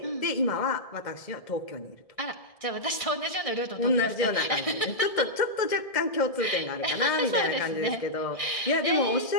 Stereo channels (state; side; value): late; right; 1.6 ms